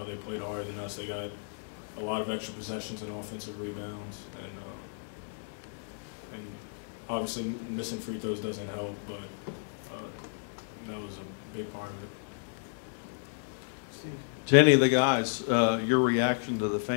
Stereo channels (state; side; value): silent; right; digital silence